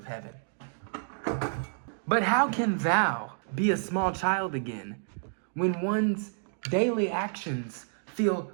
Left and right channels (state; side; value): silent; left; digital silence